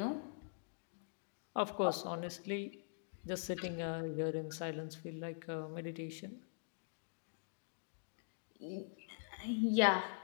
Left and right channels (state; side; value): silent; right; digital silence